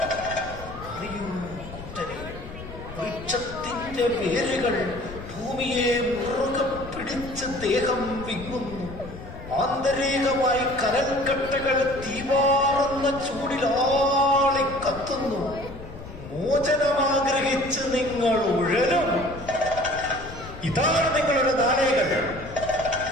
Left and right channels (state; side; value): noise; left; rumble, 13 dB below the sound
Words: വൃക്ഷത്തിന്റെ വേരുകൾ ഭൂമിയെ മുറുകെ പിടിച്ച് ദേഹം വിങ്ങുന്നു. ആന്തരികമായി കനൽക്കട്ടകൾ തീവാറുന്ന ചൂടിലാളി കത്തുന്നു. മോചനമാഗ്രഹിച്ച് നിങ്ങൾ ഉഴലും. ഇതാണ് നിങ്ങളുടെ നാടകൾ.